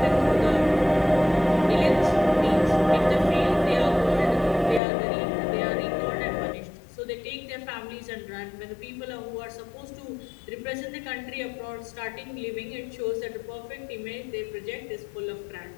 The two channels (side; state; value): right; drops out; at 4.8 s